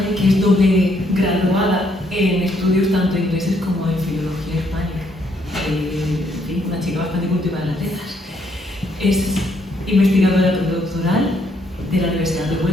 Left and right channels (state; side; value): normal; both; correlation 0.71